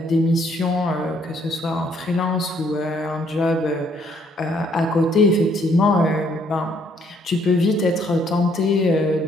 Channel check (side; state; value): both; normal; correlation 0.67